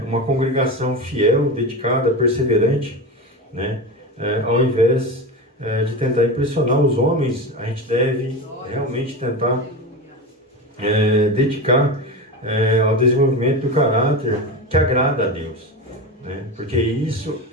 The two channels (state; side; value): normal; both; correlation 0.23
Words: Uma congregação fiel, dedicada, perseverante, né? Ao invés de tentar impressionar os homens, a gente deve realmente tentar dedicar ao desenvolvimento do caráter que agrada a Deus, né? Porque isso